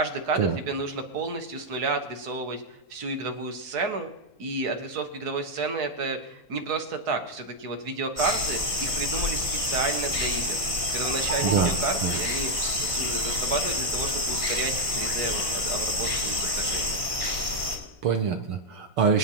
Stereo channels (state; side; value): late; left; 1.5 ms